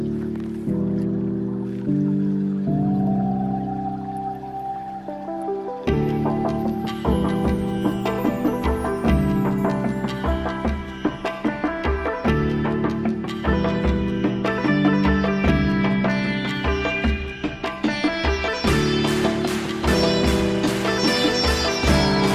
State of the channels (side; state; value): both; identical; correlation 1.00